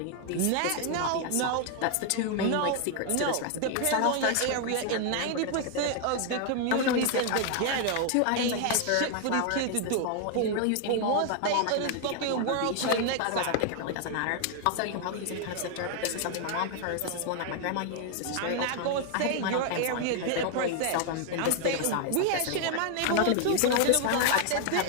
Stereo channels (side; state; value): both; different; correlation 0.00